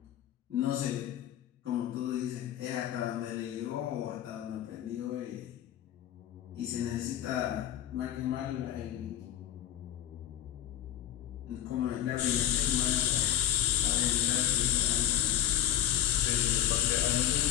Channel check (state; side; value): quieter; right; 11.6 dB